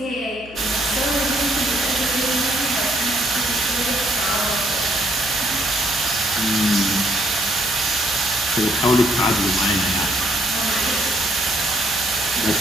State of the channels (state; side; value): noise; right; hum, 22 dB below the sound